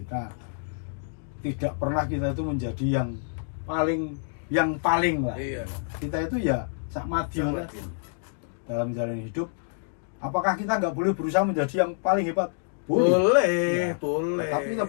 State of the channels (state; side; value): silent; right; digital silence